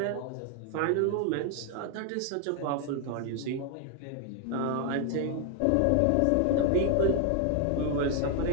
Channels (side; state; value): both; different; correlation 0.00